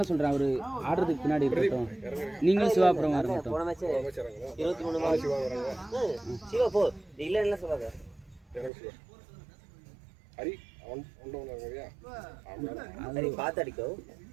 சொல்றேன் அவரு ஆடுறதுக்கு பின்னாடி இருக்கட்டும் நீங்களும் சிவா அப்புறம் வரட்டும் போன மேட்ச் 23 சிவா வராங்க சிவா போ இல்ல இல்ல சொல்லாத ஹரி ஒண்டோனரியா ஹரி பாத்து அடிக்கோ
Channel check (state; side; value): drops out; left; at 8.7 s